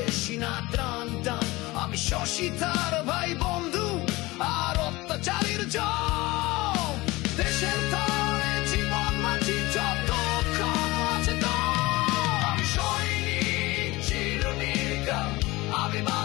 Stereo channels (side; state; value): right; quieter; 21.1 dB